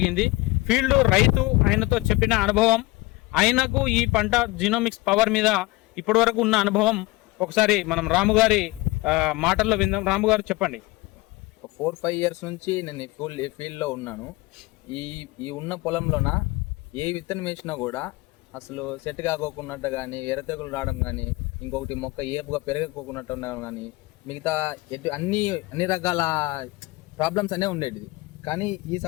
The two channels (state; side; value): quieter; right; 21.5 dB